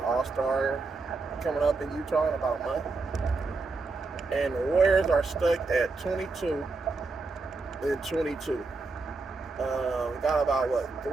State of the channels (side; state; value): left; quieter; 3.8 dB